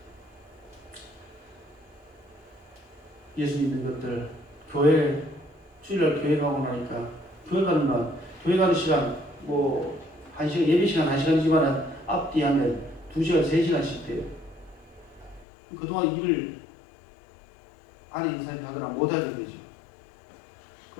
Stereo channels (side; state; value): right; drops out; at 15.5 s